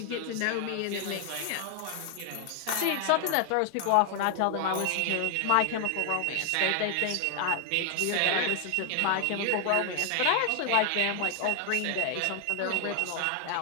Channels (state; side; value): different; both; correlation 0.00